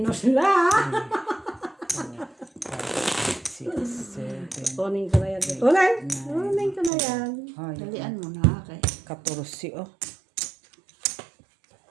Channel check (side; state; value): left; drops out; at 6.9 s